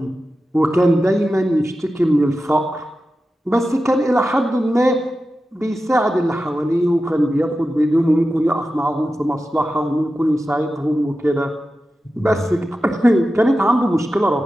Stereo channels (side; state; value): both; normal; correlation 0.92